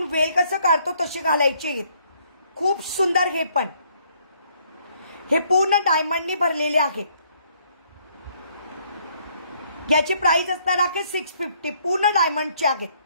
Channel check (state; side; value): inverted; both; correlation -0.66